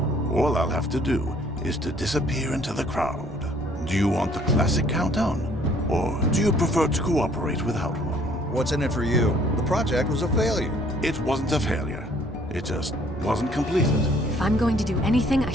all I'll have to do is to disappear into the crowd. Do you want the classic countdown? Or do you prefer to cooperate without one? What's in it for you? The project was a failure. It wasn't a failure. It just wasn't completed. If I'm going to do anything, I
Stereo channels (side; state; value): both; normal; correlation 0.59